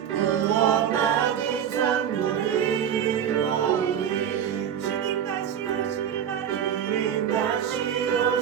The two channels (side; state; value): left; quieter; 9.0 dB